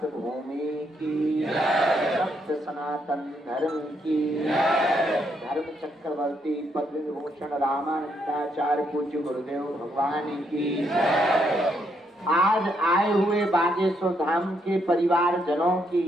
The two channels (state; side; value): normal; both; correlation 0.75